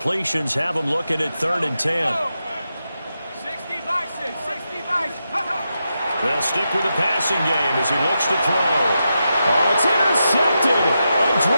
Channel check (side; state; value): both; inverted; correlation -0.87